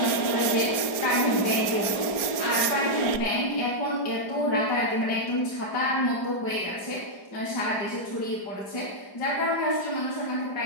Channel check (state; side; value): late; right; 4.9 ms